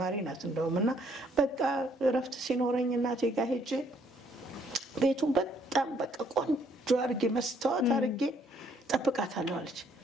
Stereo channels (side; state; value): both; normal; correlation 0.66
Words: ናት እንደውም እና በቃ እረፍት ሲኖረኝ እናቴ ጋር ሄጄ ቤቱን በጣም በቃ ቆንጆ አድርጌ መስታወት አድርጌ ጠብቃታለሁ አለች።